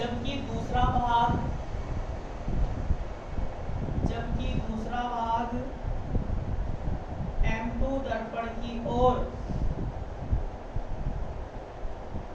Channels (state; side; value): identical; both; correlation 1.00